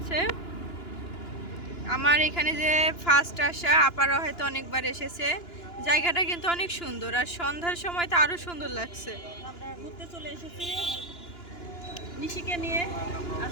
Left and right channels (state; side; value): late; right; 2.9 ms